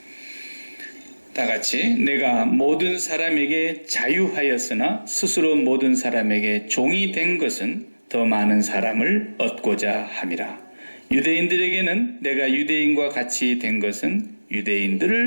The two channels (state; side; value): inverted; both; correlation -1.00